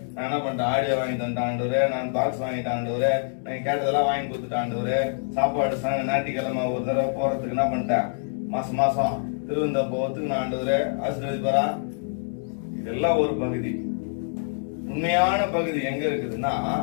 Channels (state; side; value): silent; right; digital silence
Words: நான் என்ன பண்ணிட்டேன் ஆடியோ வாங்கி தந்துட்டேன் ஆண்டவரே, நான் பாக்ஸ் வாங்கிட்டேன் ஆண்டவரே, நான் கேட்டதெல்லாம் வாங்கி கொடுத்துட்டேன் ஆண்டவரே, சாப்பாடு ஞாயிற்றுக்கிழமை ஒரு தடவை போறதுக்கு என்ன பண்ணிட்டேன், மாசம் மாசம் திருவந்த போறதுக்கு நான் ஆண்டவரே ஆசீர்வதிப்பாரா? இதெல்லாம் ஒரு பகுதி. உண்மையான பகுதி எங்க இருக்குதுன்னா,